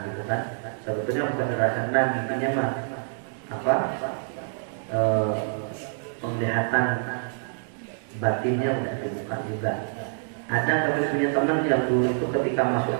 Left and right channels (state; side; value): silent; left; digital silence